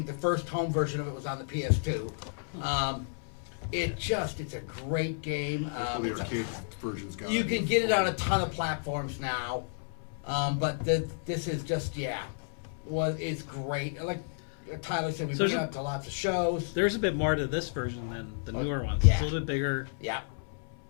the first home version of it was on the PS2. It's a great game. Hopefully It's a- arcade version's got you it. can get it on a ton of platforms now, but this is just it's great. Like Tyler said, we So bring it is it- out to lots of shows. There's a bit more to this version than the newer ones. yeah. It's a little bit bigger. Yeah,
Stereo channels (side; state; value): right; silent; 57 dB below the other